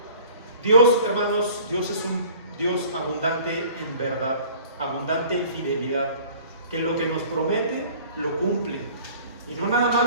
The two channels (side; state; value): both; inverted; correlation -0.49